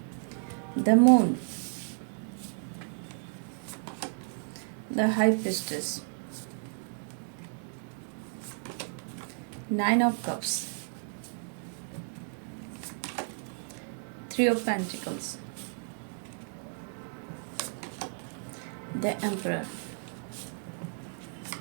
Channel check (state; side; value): silent; left; 56 dB below the other